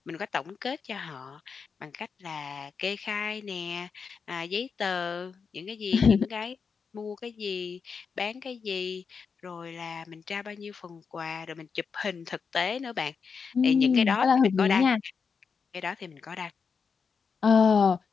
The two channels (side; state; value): right; quieter; 5.7 dB